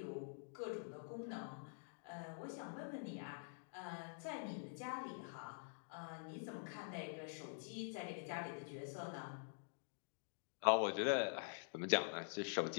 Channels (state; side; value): silent; right; digital silence